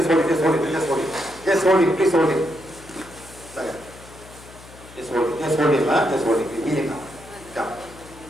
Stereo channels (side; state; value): left; noise; hum, 20 dB below the sound